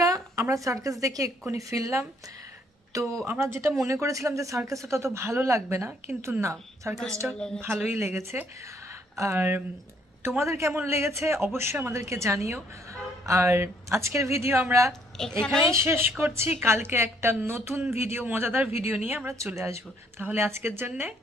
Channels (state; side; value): normal; both; correlation 0.66